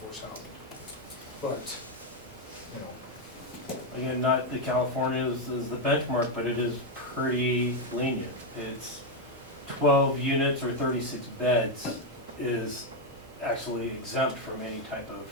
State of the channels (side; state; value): both; normal; correlation 0.03